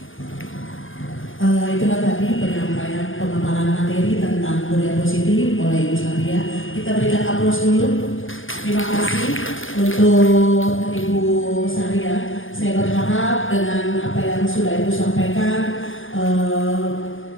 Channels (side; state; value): right; late; 0.58 ms